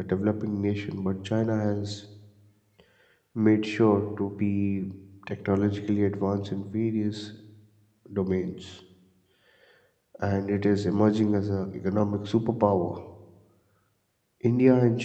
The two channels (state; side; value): identical; both; correlation 1.00